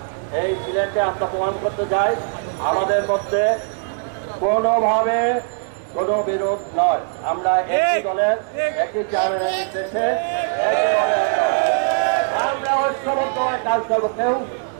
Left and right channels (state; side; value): silent; left; digital silence